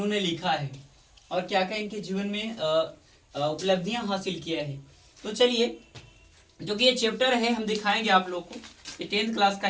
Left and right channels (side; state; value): both; identical; correlation 1.00